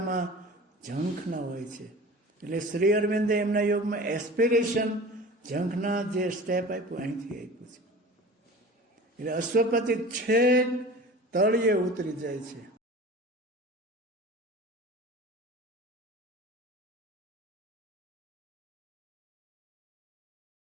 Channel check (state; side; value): normal; both; correlation 0.39